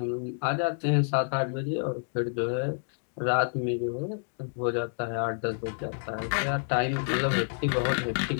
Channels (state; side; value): silent; right; digital silence